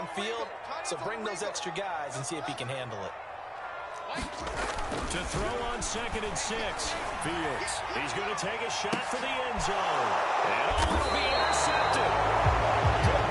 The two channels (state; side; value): identical; both; correlation 1.00